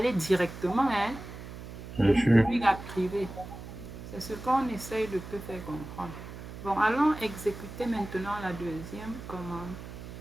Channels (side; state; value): right; noise; hum, 12 dB below the sound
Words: directement Bien de sûr. public à privé. C'est ce qu'on essaye de te faire comprendre. Bon, allons exécuter maintenant la deuxième commande.